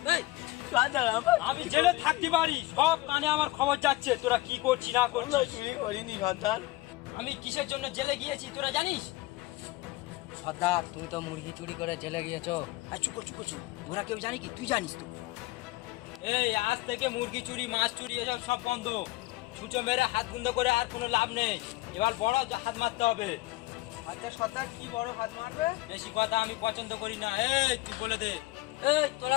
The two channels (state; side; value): quieter; right; 19.5 dB